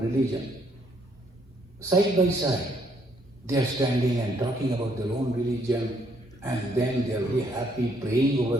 religion. Side by side, they are standing and talking about their own religion, and then they are very happy praying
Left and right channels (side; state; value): both; normal; correlation 0.69